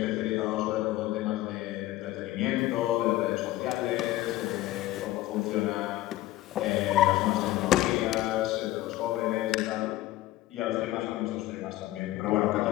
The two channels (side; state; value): right; quieter; 15.9 dB